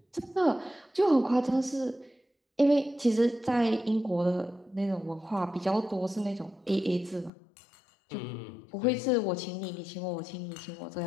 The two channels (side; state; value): right; drops out; at 7.3 s